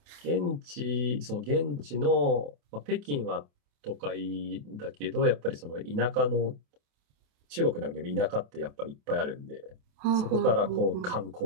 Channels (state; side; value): late; left; 28 ms